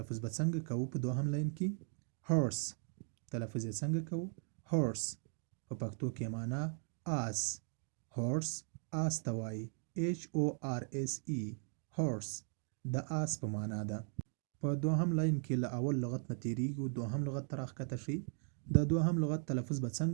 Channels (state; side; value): silent; left; 52 dB below the other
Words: به څنګه کوو په دوهم لاین کې؟ هورس. تلفظ یې څنګه کوو؟ هورس. په پښتو کې معنا آس. هورس آس ته وایي. HORSE. هورس د آس په معنا ده. په دوهم لاین کې له اول لغت نه تیریږو. دوهم لغت ته راښکته شئ. د دوهم لغت تلفظ به